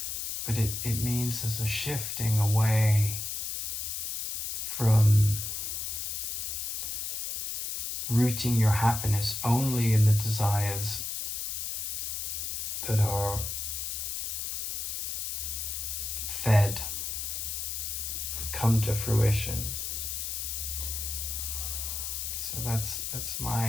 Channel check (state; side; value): noise; left; hiss, 3 dB below the sound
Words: But it means there's a shifting away from rooting your happiness only in the desires that are fed, come to fruition. So that's